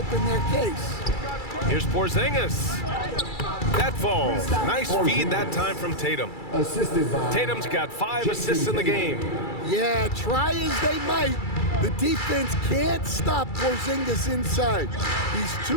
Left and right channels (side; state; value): right; late; 2.3 ms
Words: their case. Here's Porzingis. That falls. Nice feed that time from Tatum. Tatum's got 5 assists in the game. Yeah, try as they might, the defense can't stop Porzingis inside. He's